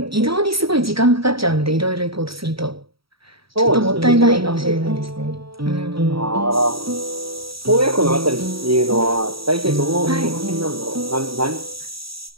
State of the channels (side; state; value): left; late; 0.75 ms